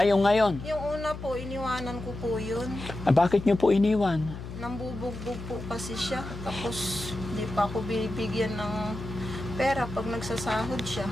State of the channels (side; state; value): left; noise; hum, 10 dB below the sound